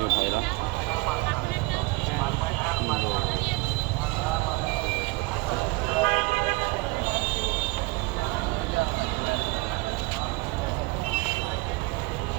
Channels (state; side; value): quieter; left; 24.0 dB